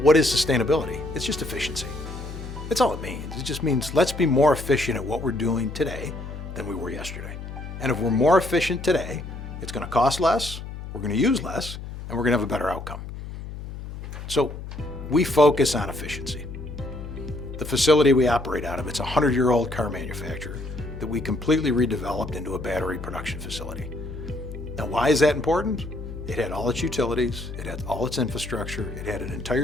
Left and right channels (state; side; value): noise; left; hum, 10 dB below the sound